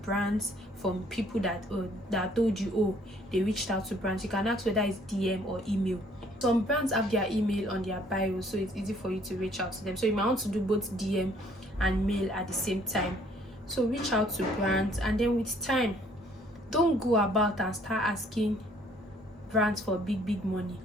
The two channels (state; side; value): normal; both; correlation 0.61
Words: brands from people that told you, oh, they reached out to brands. You can ask whether it's DM or email. Some brands have their email on their bio, so it's easy for you to reach out to them. So you might want to do both DM and mail at the same time. So reach out to brands, and then with time, don't go about and start asking brands for big money,